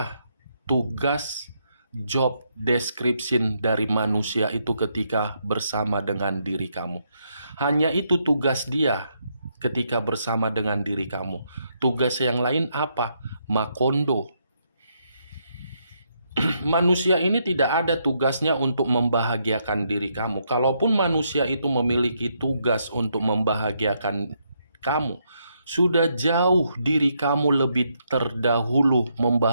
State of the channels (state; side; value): inverted; both; correlation -0.77